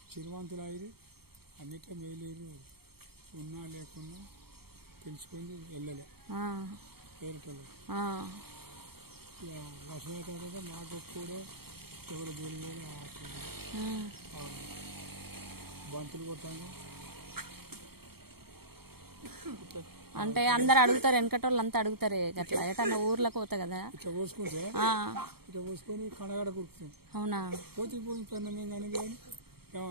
చిరువంతులు అయ్యి అన్నిట్లో మేలేరు, ఉన్నా లేకున్నా తెలుసుకొని వెళ్ళలే పేరుటలు. లక్ష్మీ తర్వాత నాకు కూడా ఎవరు బోలి బంతులు కొట్టాను. అంటే అందరు అడుగుతారు, వెనకటోళ్ళు అంతా అడుగుతారే అట్లా ఎటన్నా ఊర్లకు పోతా కదా ఇట్లా పోసుకుంటే ఇట్లా పోసుకొని కనగడ కుడుతుంది. అవునా? పోతే కానీ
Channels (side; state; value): left; late; 0.95 ms